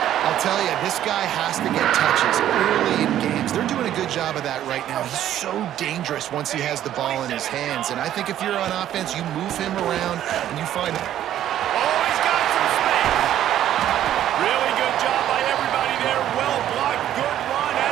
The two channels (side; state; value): left; quieter; 11.7 dB